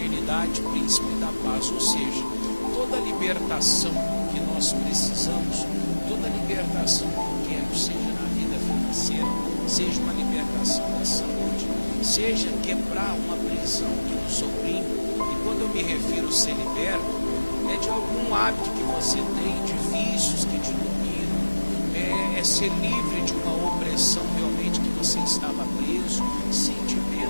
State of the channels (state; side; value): inverted; both; correlation -1.00